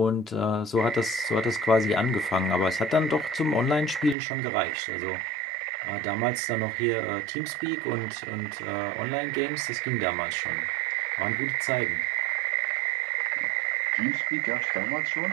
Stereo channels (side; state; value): left; drops out; at 4.2 s